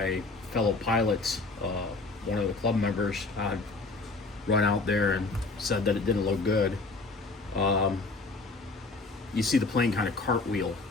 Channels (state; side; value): quieter; right; 3.6 dB